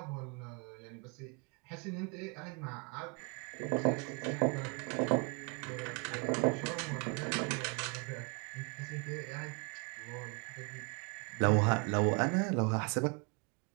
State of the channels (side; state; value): left; quieter; 32.2 dB